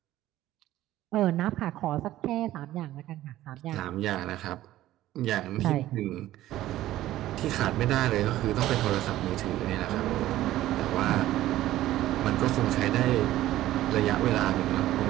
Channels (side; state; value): left; quieter; 14.6 dB